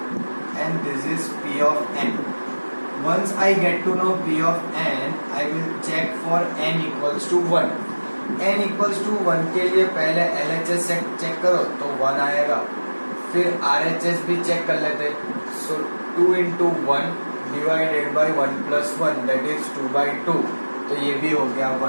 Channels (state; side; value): inverted; both; correlation -1.00